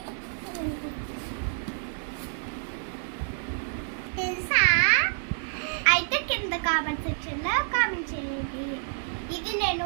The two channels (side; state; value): left; silent; digital silence